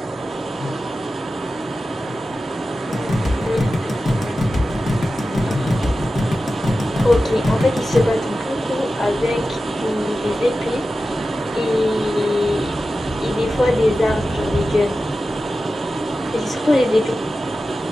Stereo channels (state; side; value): normal; both; correlation 0.93